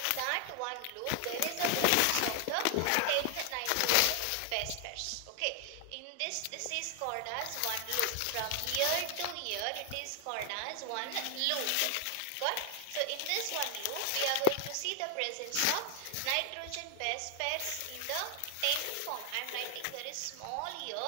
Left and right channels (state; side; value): different; both; correlation 0.00